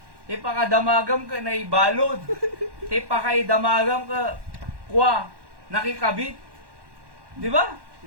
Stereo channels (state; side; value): late; left; 1.1 ms